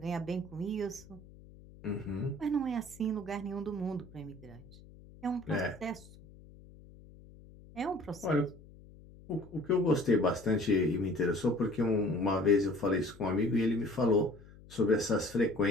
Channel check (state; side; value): noise; left; hum, 21 dB below the sound